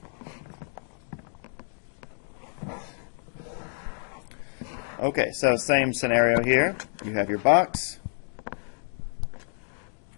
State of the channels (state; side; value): silent; right; digital silence